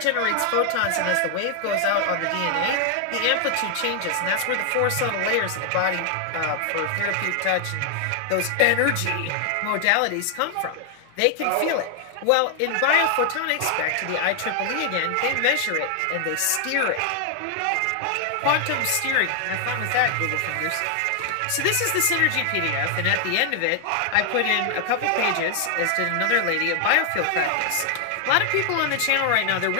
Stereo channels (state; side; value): different; both; correlation 0.00